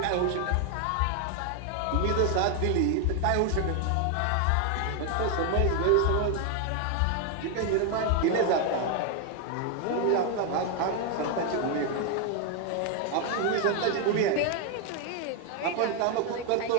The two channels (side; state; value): both; different; correlation 0.00